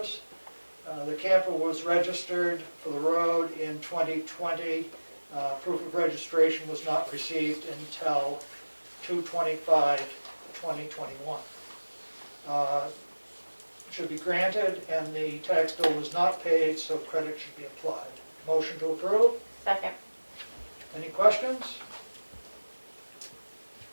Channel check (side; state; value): both; inverted; correlation -1.00